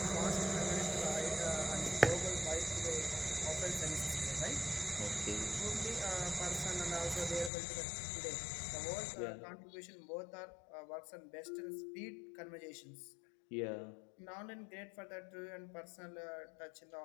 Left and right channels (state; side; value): drops out; right; at 7.5 s